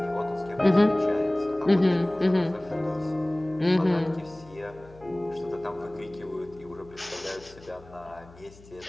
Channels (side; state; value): left; noise; hum, 23 dB below the sound